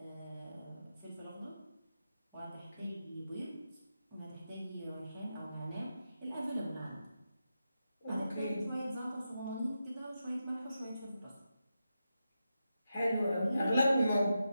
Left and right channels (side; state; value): both; inverted; correlation -0.88